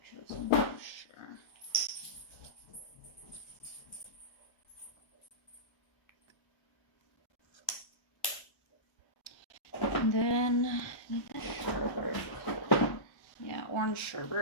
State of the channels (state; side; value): late; right; 1.3 ms